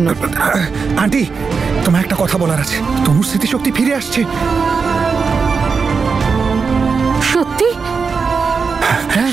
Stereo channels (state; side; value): quieter; left; 5.2 dB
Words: আন্টি, তোমার একটা কথা বলার আছে। তনুর স্মৃতিশক্তি ফিরে আসছে। সত্যি? হ্যাঁ